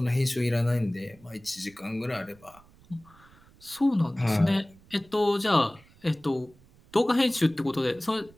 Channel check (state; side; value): noise; right; rumble, 27 dB below the sound